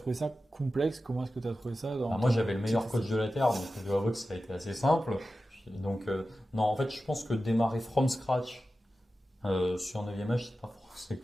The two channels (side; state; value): both; normal; correlation 0.93